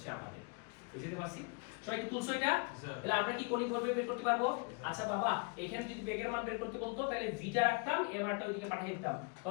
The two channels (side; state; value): right; quieter; 32.9 dB